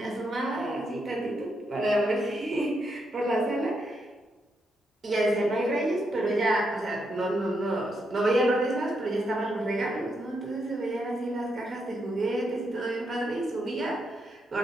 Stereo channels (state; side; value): normal; both; correlation 0.80